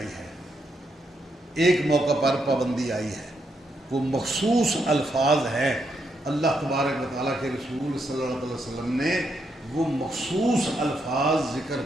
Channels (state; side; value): normal; both; correlation 0.79